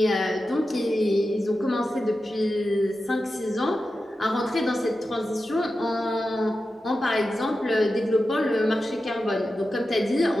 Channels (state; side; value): normal; both; correlation 0.92